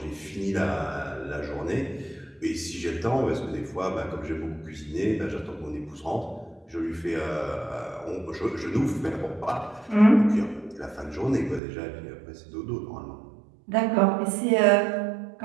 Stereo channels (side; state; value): left; drops out; at 11.6 s